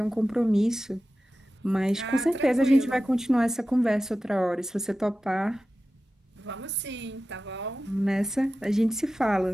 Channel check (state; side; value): normal; both; correlation 0.94